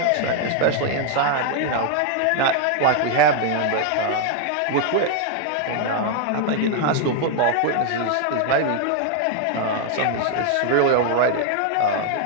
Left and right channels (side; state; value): both; different; correlation 0.00